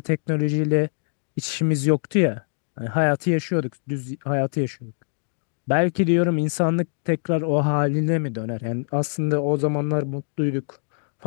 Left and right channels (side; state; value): right; silent; digital silence